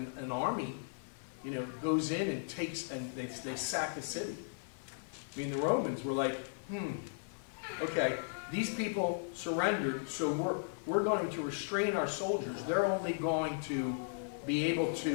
an army, you know, goes in and takes, and they sack a city. I mean, the Romans were like, okay, these people surrendered, so we're going to restrain our soldiers. They're only going to be able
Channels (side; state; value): right; silent; 54 dB below the other